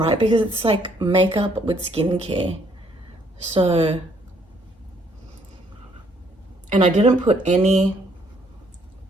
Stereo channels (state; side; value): normal; both; correlation 0.67